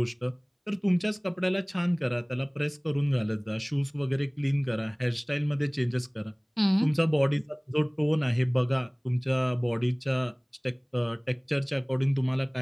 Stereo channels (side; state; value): both; identical; correlation 1.00